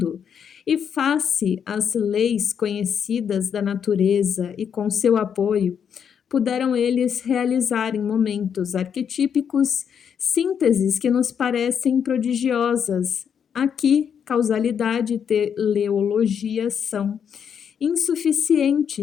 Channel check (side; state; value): right; quieter; 7.7 dB